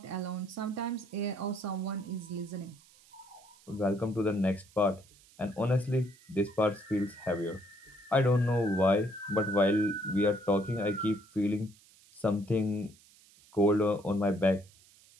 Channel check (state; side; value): noise; right; hiss, 27 dB below the sound